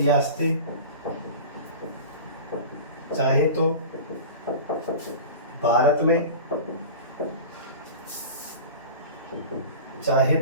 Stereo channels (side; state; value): both; inverted; correlation -0.34